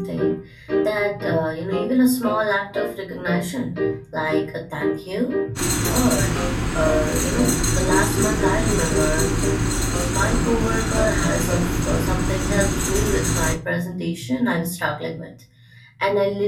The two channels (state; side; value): identical; both; correlation 1.00